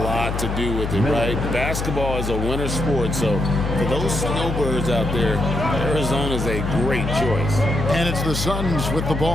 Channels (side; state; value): left; noise; hum, 3 dB below the sound